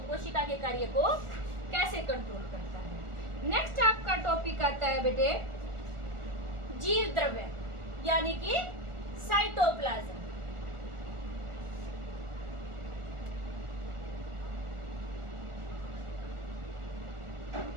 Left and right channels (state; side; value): late; left; 1.4 ms